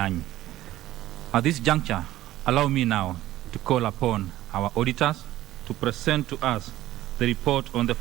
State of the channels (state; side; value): quieter; left; 14.9 dB